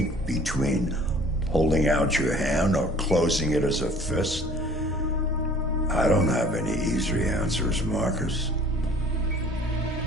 between holding out your hand or closing it as a fist. I don't have any easy answers, Marcus.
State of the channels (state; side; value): normal; both; correlation 0.50